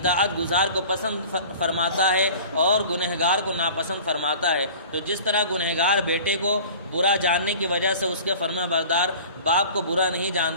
گزار کو پسند فرماتا ہے اور گنہگار کو ناپسند فرماتا ہے۔ تو جس طرح گنہگار بیٹے کو برا جاننے کی وجہ سے اس کے فرما بردار باپ کو برا نہیں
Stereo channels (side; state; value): both; inverted; correlation -0.42